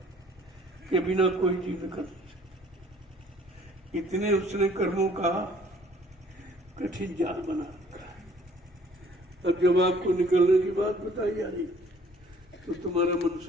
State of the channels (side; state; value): both; normal; correlation 0.56